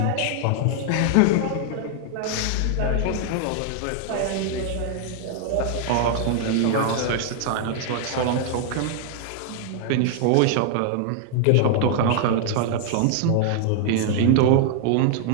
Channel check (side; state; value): both; different; correlation 0.00